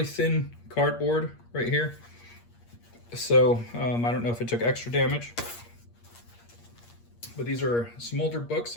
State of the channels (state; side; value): late; right; 8.5 ms